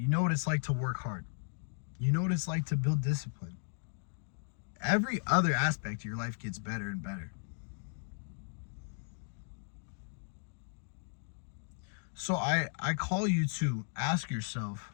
know what it's like to work hard. You know what it's like to build discipline. Every other aspect of your life gets better and better. So I call you to ask yourself,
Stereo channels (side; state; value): right; silent; digital silence